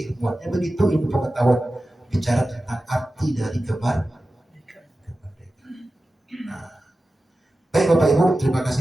Begitu ilmu pengetahuan bicara tentang arti dari kemerdekaan. Baik Bapak Ibu, terima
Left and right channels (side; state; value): both; normal; correlation 0.94